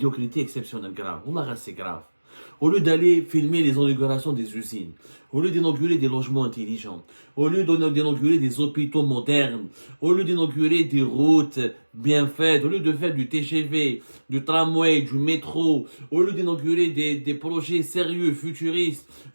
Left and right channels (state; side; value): inverted; both; correlation -1.00